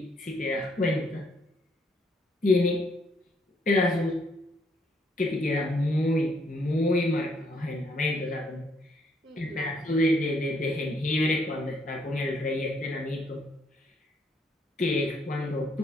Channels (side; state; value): both; normal; correlation 0.70